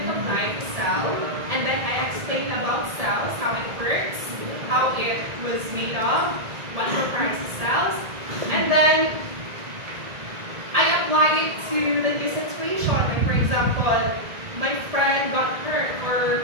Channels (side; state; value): left; late; 1.7 ms